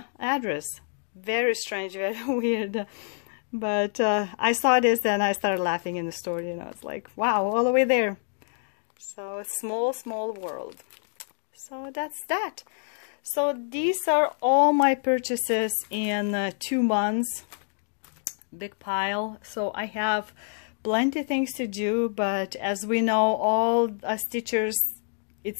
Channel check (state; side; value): silent; right; digital silence